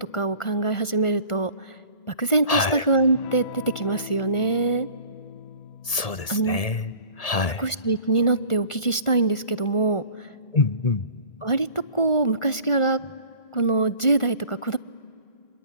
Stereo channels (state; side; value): late; right; 1.7 ms